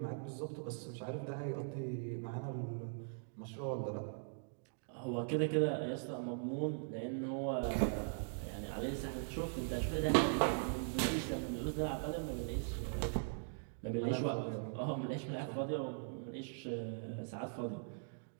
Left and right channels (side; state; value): left; silent; digital silence